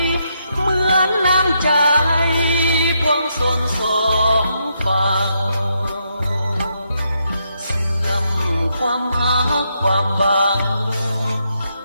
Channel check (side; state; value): both; inverted; correlation -0.79